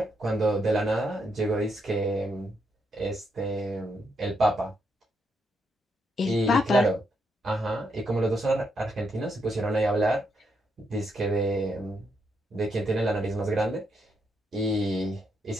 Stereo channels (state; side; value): normal; both; correlation 0.79